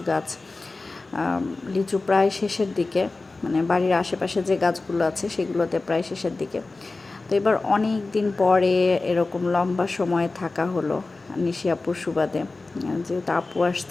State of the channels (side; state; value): right; quieter; 3.4 dB